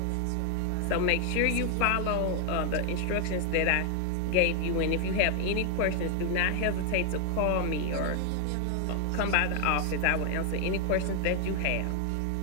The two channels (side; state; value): both; different; correlation 0.00